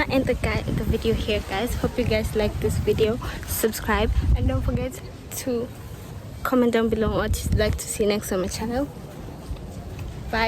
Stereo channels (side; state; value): both; identical; correlation 1.00